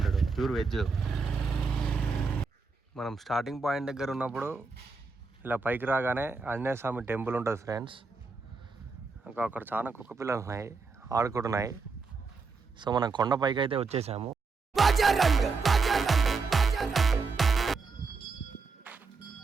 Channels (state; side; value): quieter; left; 4.4 dB